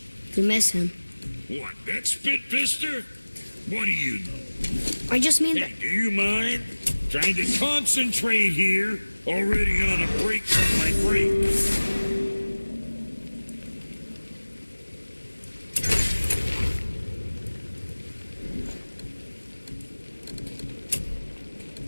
You miss him. What, that spit-fister? What do you know? I just mean Hey, that... do you mind? Trying to concentrate here, already on a break from my break.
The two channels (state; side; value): inverted; both; correlation -1.00